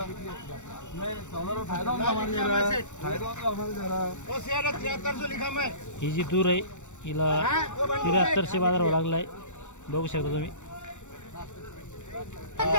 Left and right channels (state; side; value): late; right; 0.84 ms